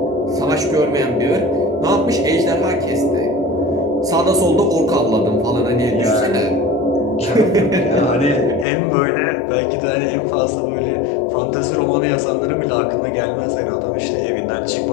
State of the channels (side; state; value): right; drops out; at 8.7 s